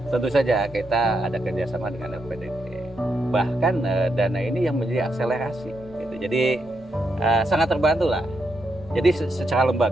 Tentu saja kita ada kerjasama dengan LPDP. Bahkan dana ini yang menjadi akselerasi. Gitu. Jadi sangat terbantu lah. Jadi secara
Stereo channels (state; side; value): normal; both; correlation 0.82